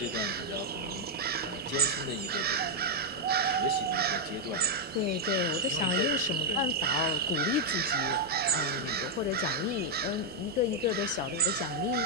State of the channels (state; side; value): normal; both; correlation -0.01